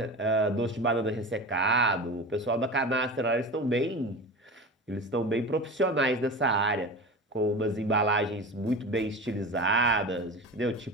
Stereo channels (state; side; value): normal; both; correlation 0.30